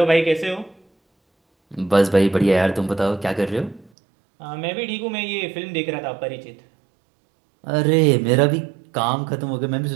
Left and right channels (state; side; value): drops out; left; at 3.9 s